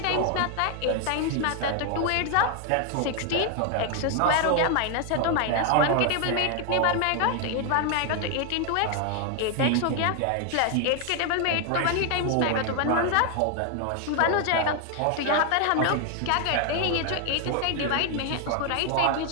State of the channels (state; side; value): different; both; correlation 0.00